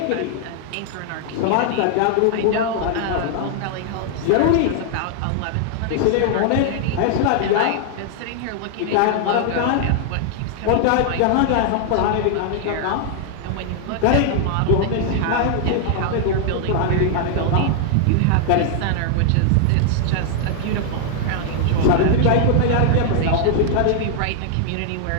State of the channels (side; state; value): both; different; correlation 0.00